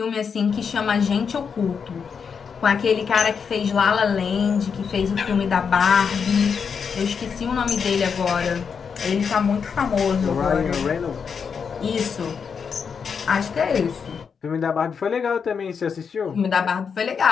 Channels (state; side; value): quieter; right; 6.3 dB